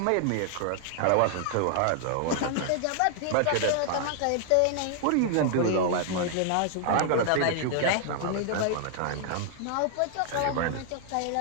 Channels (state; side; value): different; both; correlation 0.00